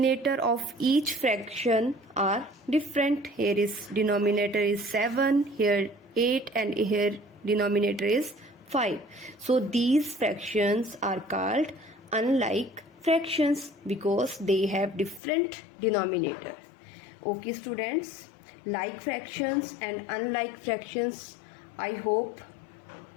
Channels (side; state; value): right; drops out; at 15.2 s